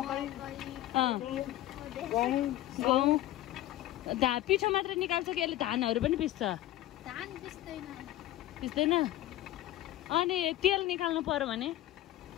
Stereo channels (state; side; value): quieter; right; 14.7 dB